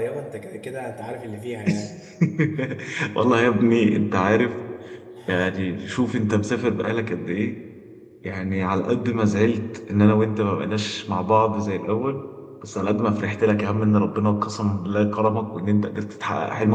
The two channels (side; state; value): both; identical; correlation 1.00